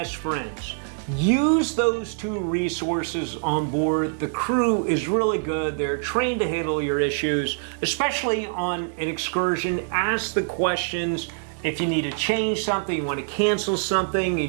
friends. Use those two resources on board. The crew is really good. They're trained to handle your issues, especially on an excursion. Ask the questions. If you need to change something, you want to cancel something, you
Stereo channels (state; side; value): silent; left; digital silence